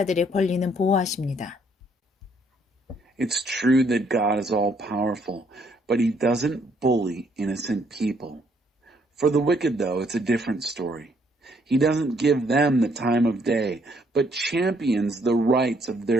권리는 보호하십니다. It's true that God is all-powerful, but he doesn't bully innocent people. For the wicked, though, it's a different story. He doesn't give them the time of day, but champions the rights of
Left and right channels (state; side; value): normal; both; correlation 0.68